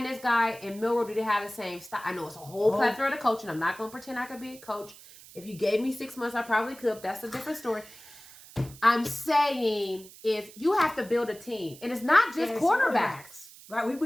this guy and Milroe, do they have the same style? I know it's a whole plethora of coaching. I'm not going to pretend I could be a coach. If you gave me 6 months, I probably could. That's a different story. I'm saying is you have to build a team. And it's not just quarterbacks. Right,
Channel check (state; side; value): noise; right; hiss, 20 dB below the sound